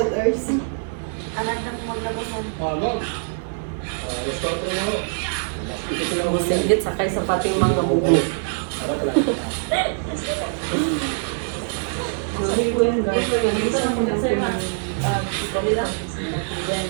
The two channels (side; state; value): left; silent; digital silence